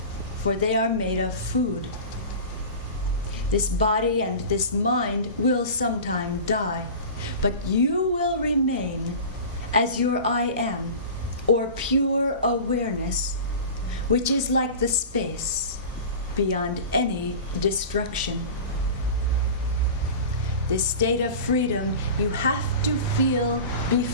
for they are made of food. This body and this mind will sometime die, but you will remain as your I am, or pure awareness, which is like the space beyond any destruction. This state of freedom you have to feel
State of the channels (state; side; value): inverted; both; correlation -0.34